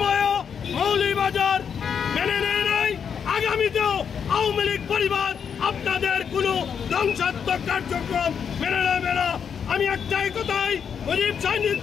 মৌলভীবাজার মেনে নেয় নাই, আগামীতেও আওয়ামী লীগ পরিবার আপনাদের কোনো ধ্বংসাত্মক কার্যক্রম মেনে নেবে না। আমি একটাই কথাই মুজিব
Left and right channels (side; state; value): right; quieter; 7.2 dB